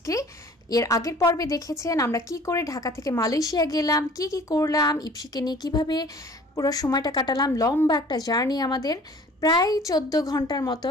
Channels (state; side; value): normal; both; correlation 0.49